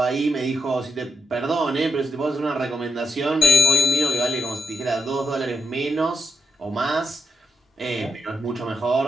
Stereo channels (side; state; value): both; normal; correlation 0.82